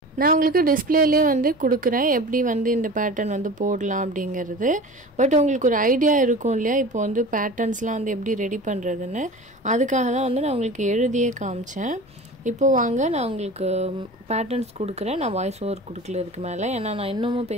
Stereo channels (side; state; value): both; normal; correlation 0.36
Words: நான் உங்களுக்கு டிஸ்பிளேலேயே வந்து கொடுக்குறேன் எப்படி வந்து இந்த பேட்டர்ன் வந்து போடலாம் அப்படிங்கிறது. பட் உங்களுக்கு ஒரு ஐடியா இருக்கும் இல்லையா இப்போ வந்து பேட்டர்ன்ஸ்லாம் வந்து எப்படி ரெடி பண்ணுறதுன்னு. அதுக்காக தான் வந்து நான் உங்களுக்கு எழுதியே காமிச்சேன். இப்போது வாங்க நான் உங்களுக்கு பேட்டர்ன்ஸ் கொடுக்குறேன். நான் வாய்ஸ் ஓவர் கொடுக்கல இதுக்கு மேலே, ஏன்னா நான் இன்னமும்